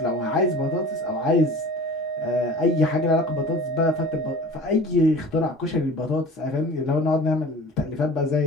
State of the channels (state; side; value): normal; both; correlation 0.41